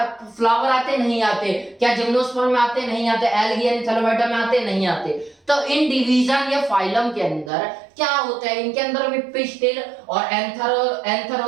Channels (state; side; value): drops out; left; at 7.5 s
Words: फ्लावर आते? नहीं आते। क्या जिम्नोस्पर्म में आते? नहीं आते। एल्गी यानी थैलोफाइटा में आते? नहीं आते। तो इन डिवीजन या फाइलम के अंदर क्या होता है? इनके अंदर भी पिस्टिल और एंथर